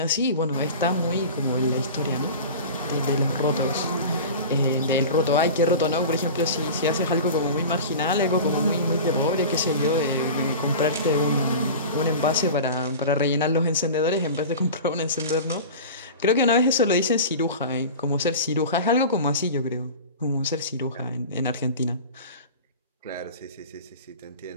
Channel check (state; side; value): inverted; both; correlation -0.33